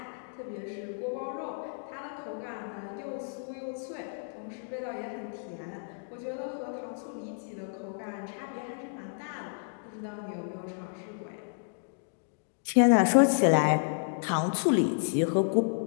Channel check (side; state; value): right; silent; digital silence